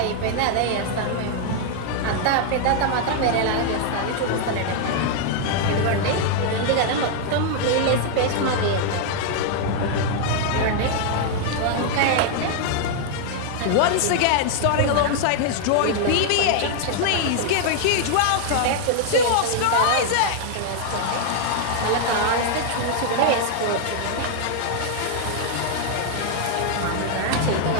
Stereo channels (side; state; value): both; different; correlation 0.00